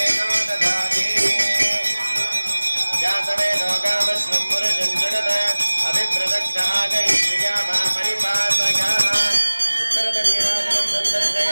ददाति जातवेदो कामश्वं पुरुषं जगद अभिप्रदग्न आगैत्रियामा परिपातयाः उत्तरतनीराजनं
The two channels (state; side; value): inverted; both; correlation -1.00